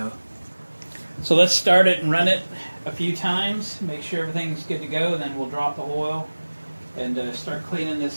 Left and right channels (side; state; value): both; inverted; correlation -1.00